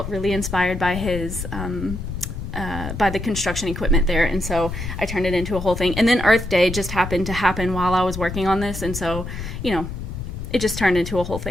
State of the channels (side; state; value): left; noise; rumble, 7 dB below the sound